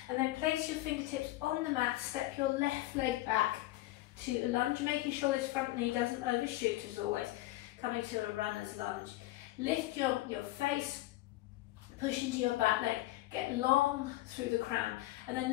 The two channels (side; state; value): right; quieter; 17.5 dB